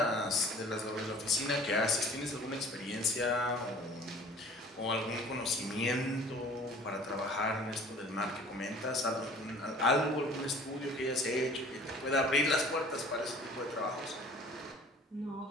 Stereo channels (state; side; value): normal; both; correlation 0.48